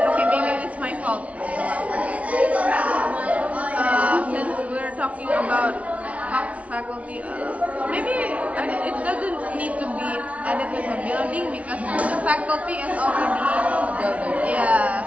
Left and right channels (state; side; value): late; left; 0.065 ms